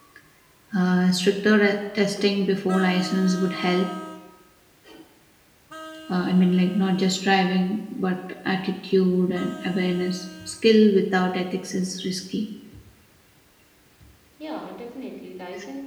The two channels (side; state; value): both; identical; correlation 1.00